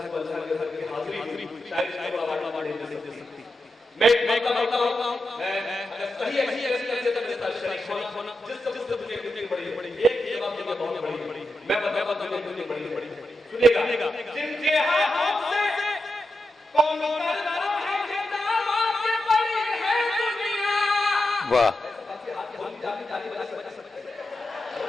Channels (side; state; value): both; normal; correlation 0.88